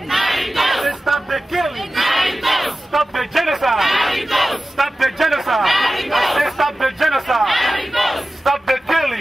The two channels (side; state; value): both; normal; correlation 0.95